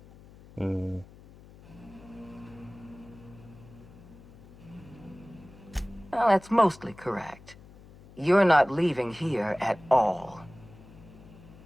Well, that's mostly correct. You're not leaving here at all.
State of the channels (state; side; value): noise; left; hum, 21 dB below the sound